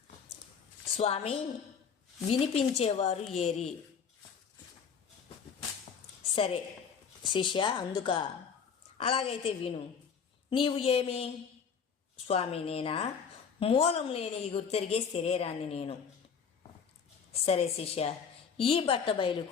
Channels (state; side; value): quieter; right; 6.6 dB